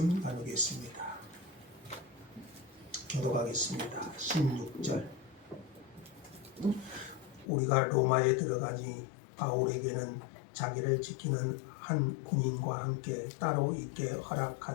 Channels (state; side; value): drops out; right; at 7.5 s